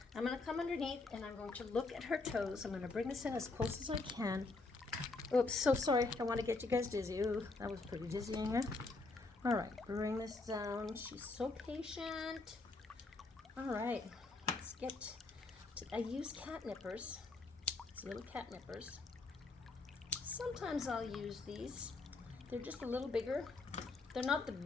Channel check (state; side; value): quieter; right; 3.5 dB